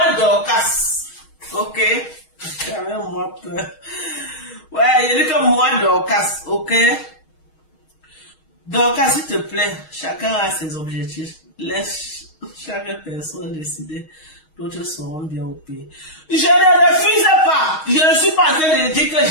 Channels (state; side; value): late; right; 6.4 ms